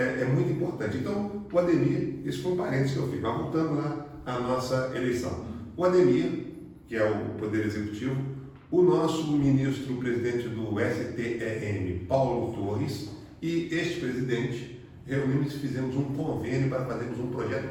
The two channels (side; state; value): both; identical; correlation 1.00